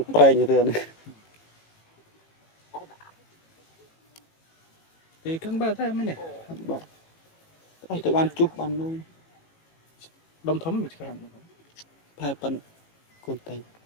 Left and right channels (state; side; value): late; right; 18 ms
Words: ប្រែងទៅនេះ Thì căng ba thay mới này. បាទអស់ទៅបានជុះបាននោះ Đông thấm được cái ផែប៉ិនកូនតែង